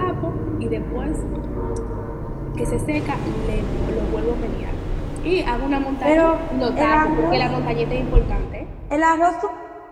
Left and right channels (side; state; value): both; identical; correlation 1.00